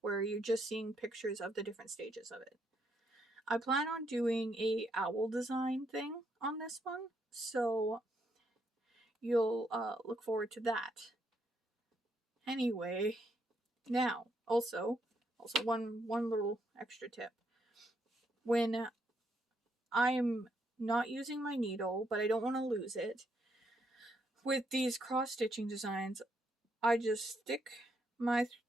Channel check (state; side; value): normal; both; correlation 0.75